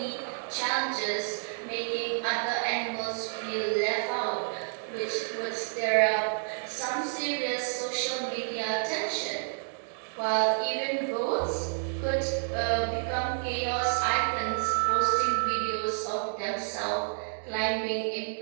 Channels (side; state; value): left; silent; digital silence